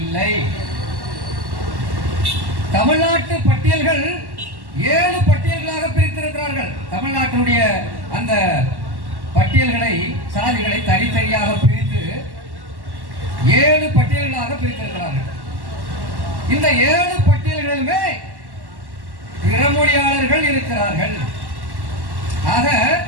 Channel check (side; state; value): left; late; 1.1 ms